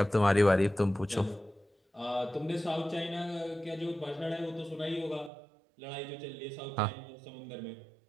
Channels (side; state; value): left; drops out; at 5.3 s